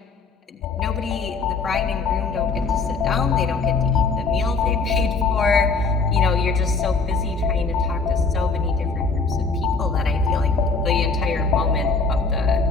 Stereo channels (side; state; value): right; quieter; 4.3 dB